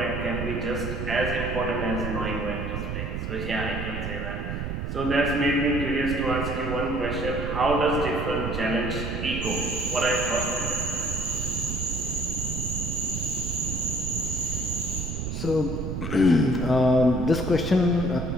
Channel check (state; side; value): noise; right; rumble, 4 dB below the sound